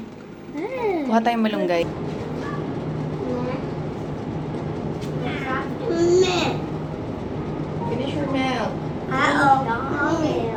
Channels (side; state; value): both; identical; correlation 1.00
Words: Kuha tayong malunggay. Finish your milk.